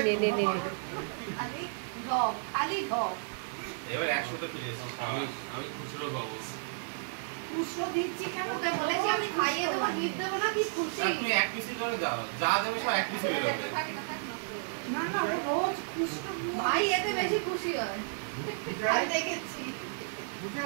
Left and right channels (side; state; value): left; silent; digital silence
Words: নে নে নে। খালি ঢপ, খালি ঢপ। এবার 100তে ফিরে এসেছি, আমি খুচরো পাবো। পুষ্প দিচ্ছি কেন? ওকে বলেছি আমি খাইয়ে দেবো, গিফট দেবো না, কি খুশি। তুমি এক পিসই করে দাও, যা দেবে সব এক পিসই বেরোবে। থাকে না থাকে না। না না, ও রোজ খুশবু ভাই এতে বেশি খুশি হয়, আমি দেখেছি।